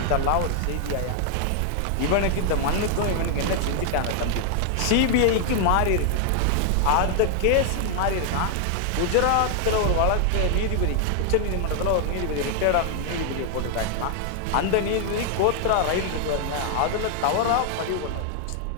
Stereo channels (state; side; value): different; both; correlation 0.00